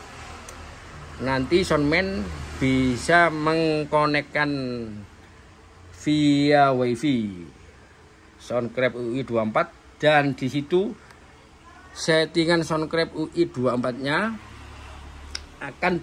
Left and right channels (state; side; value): identical; both; correlation 1.00